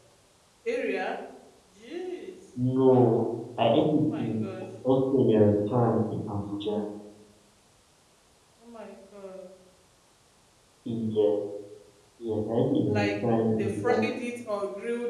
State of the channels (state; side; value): identical; both; correlation 1.00